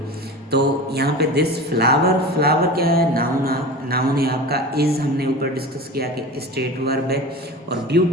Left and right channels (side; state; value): both; normal; correlation 0.33